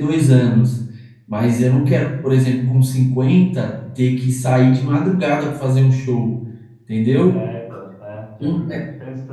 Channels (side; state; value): both; identical; correlation 1.00